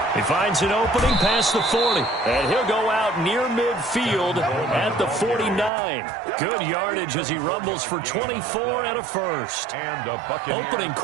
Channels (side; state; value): left; drops out; at 5.7 s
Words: He finds an opening past the 40, and he'll go out near midfield at the 49. Good yardage as he rumbles for 24 and a first. Opening